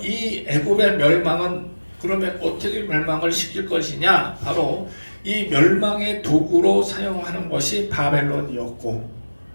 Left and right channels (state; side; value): inverted; both; correlation -1.00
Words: 애굽의 멸망은 그러면 어떻게 멸망을 시킬 것이냐? 바로 이 멸망의 도구로 사용하는 것이 바벨론이었고,